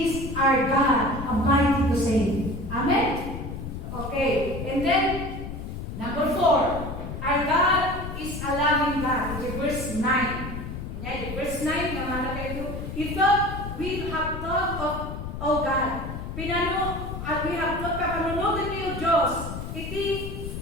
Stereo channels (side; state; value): left; noise; rumble, 7 dB below the sound